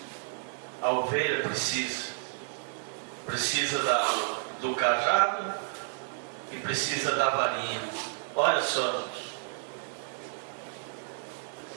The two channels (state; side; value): silent; left; digital silence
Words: A ovelha precisa do cajado e precisa da varinha. Olha só,